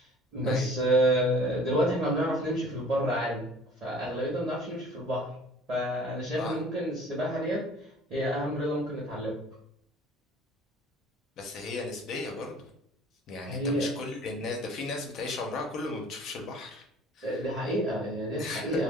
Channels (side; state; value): both; normal; correlation 0.49